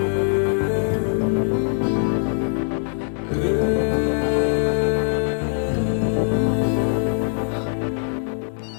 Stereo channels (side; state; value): right; silent; 64 dB below the other